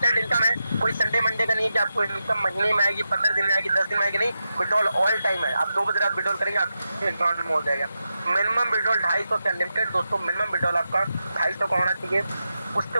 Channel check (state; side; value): inverted; both; correlation -0.89